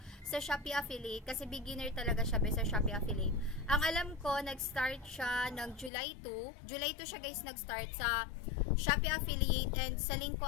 sa Shopee affiliate, kasi beginner talaga siya sa Shopee affiliate. Ang alam ko, nag-start siya ng July 2 siya guys nag-start sa Shopee affiliate, and sa link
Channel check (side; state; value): right; drops out; at 5.9 s